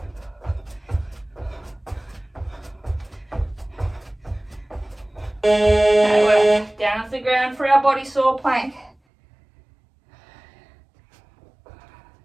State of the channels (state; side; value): drops out; left; at 9.0 s